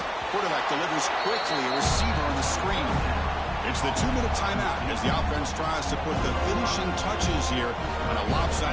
Quarterback delivers quickly. A receiver on the screen. It's the 2-minute timeout as the offense tries to put the finishing touches here on a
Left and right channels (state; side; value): identical; both; correlation 1.00